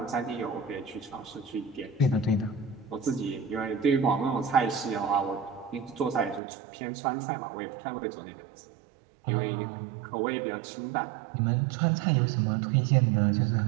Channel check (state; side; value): drops out; left; at 6.4 s